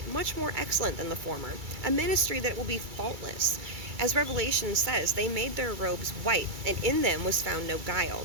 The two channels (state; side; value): late; left; 2.3 ms